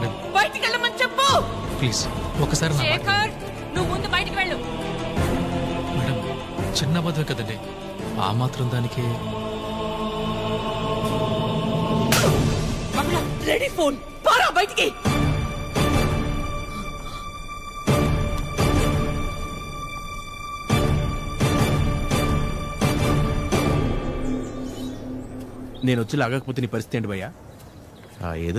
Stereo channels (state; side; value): identical; both; correlation 1.00